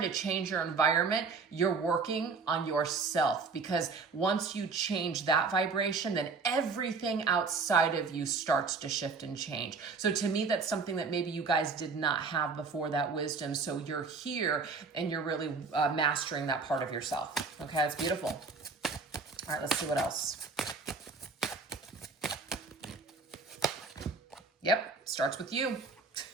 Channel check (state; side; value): quieter; left; 4.6 dB